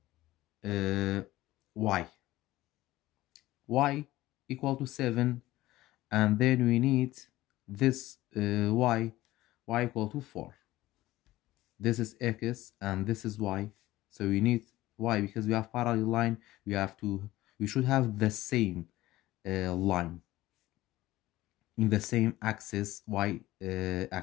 y equal to 7, and then we need this y equal to 4. This is x and this is y, so we need y because we have parallel line. We should have the same line in the same axis, y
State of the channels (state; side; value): quieter; right; 16.8 dB